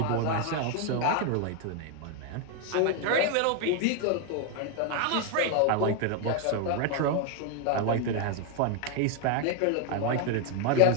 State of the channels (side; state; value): both; different; correlation 0.01